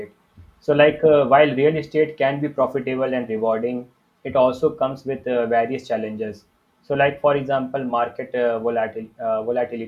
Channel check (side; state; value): both; identical; correlation 1.00